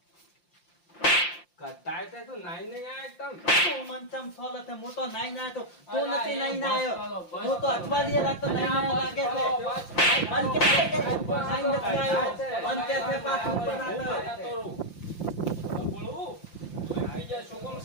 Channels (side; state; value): right; late; 5.8 ms